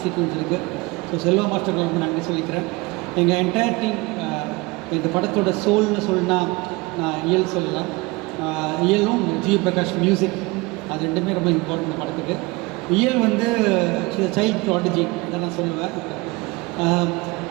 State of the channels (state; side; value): quieter; left; 23.9 dB